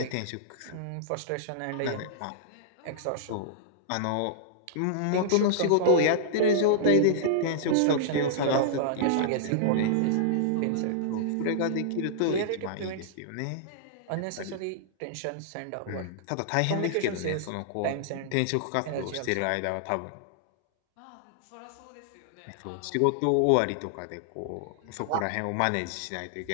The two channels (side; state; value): both; different; correlation -0.02